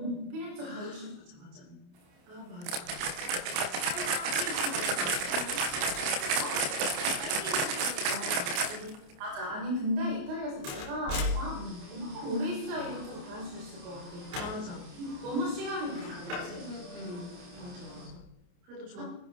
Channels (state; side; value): late; left; 29 ms